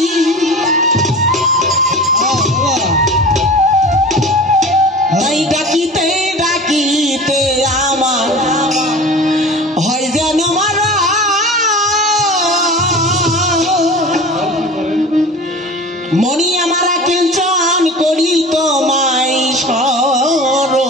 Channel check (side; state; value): both; normal; correlation 0.36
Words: মনি আমার কিঞ্চন করি তোমায়